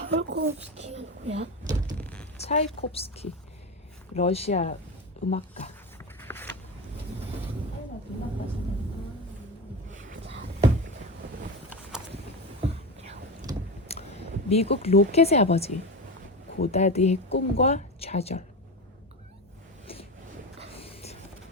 누구야? 차이콥스키. 러시아 음악가. 미국 로켓의 아버지. 고다드의 꿈과 좌절.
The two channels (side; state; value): both; normal; correlation 0.21